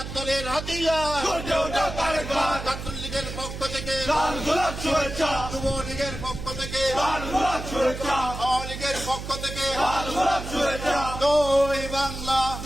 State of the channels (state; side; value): noise; right; hum, 8 dB below the sound